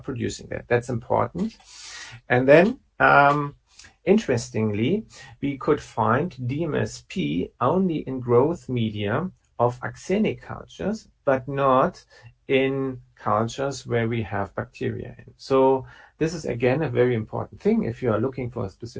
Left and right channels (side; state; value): both; identical; correlation 1.00